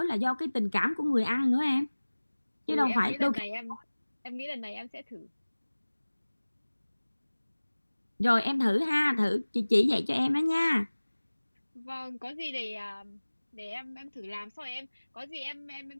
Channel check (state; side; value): inverted; both; correlation -1.00